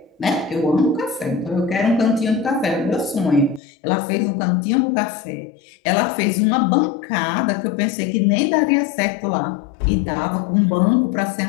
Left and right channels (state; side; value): drops out; right; at 3.6 s